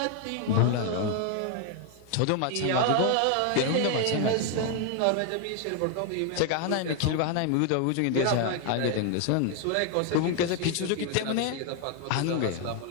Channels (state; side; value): different; both; correlation 0.00